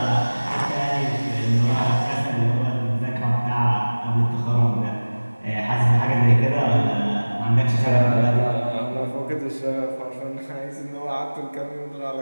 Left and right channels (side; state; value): both; inverted; correlation -1.00